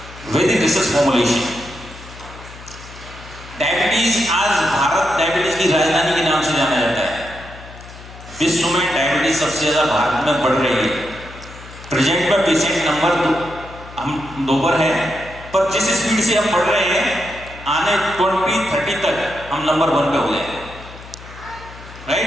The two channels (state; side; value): noise; left; hum, 17 dB below the sound